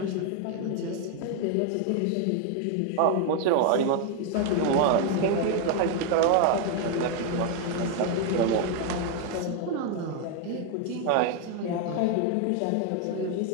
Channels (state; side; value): different; both; correlation 0.01